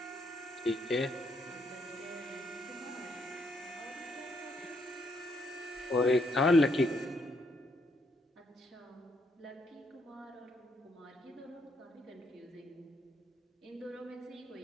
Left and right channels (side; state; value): both; normal; correlation 0.74